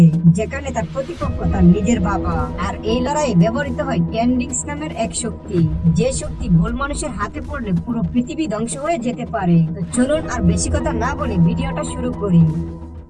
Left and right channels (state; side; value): identical; both; correlation 1.00